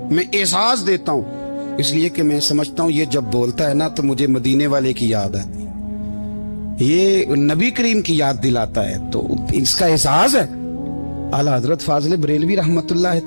میں اعزاز دیتا ہوں، اس لیے کہ میں سمجھتا ہوں یہ جب بولتا ہے نا تو مجھے مدینے والے کی یاد آتی، یہ نبی کریم کی یاد دلاتا ہے، تو اس کا احساس ہے۔ اعلیٰ حضرت فاضل بریلوی رحمت اللہ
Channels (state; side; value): inverted; both; correlation -1.00